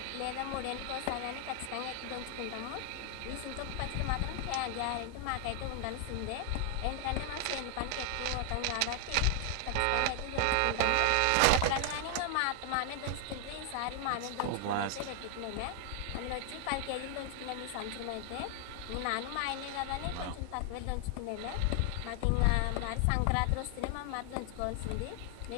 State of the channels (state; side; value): different; both; correlation 0.00